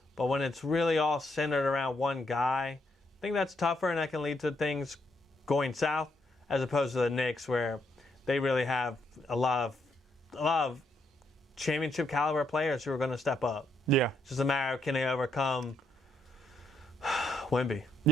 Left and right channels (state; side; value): normal; both; correlation 0.76